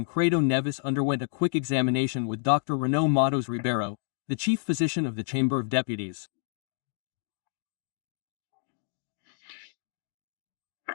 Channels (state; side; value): silent; right; digital silence